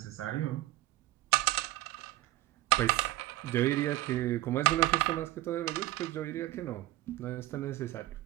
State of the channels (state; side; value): quieter; left; 16.6 dB